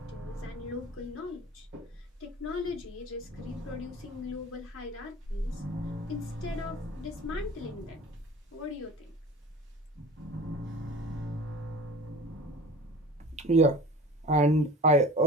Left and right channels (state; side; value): normal; both; correlation 0.38